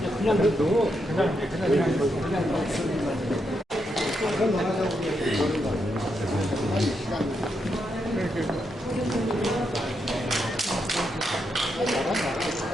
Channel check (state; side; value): normal; both; correlation 0.82